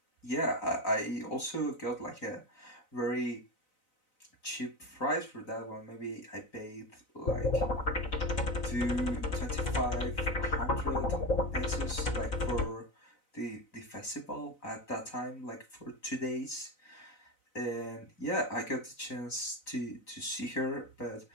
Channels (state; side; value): late; right; 4.0 ms